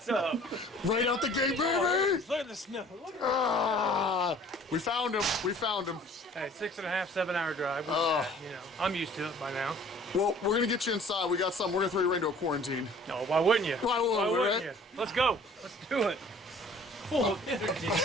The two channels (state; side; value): normal; both; correlation 0.51